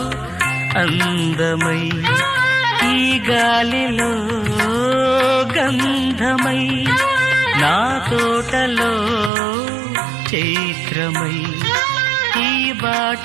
అందమై ఈ గాలిలో గంధమై నా తోటలో చైత్రమై ఈ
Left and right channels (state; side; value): drops out; left; at 9.3 s